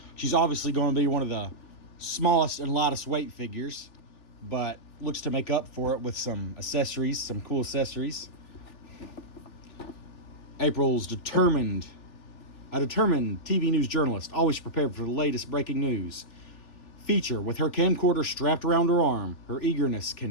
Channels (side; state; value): right; late; 3.4 ms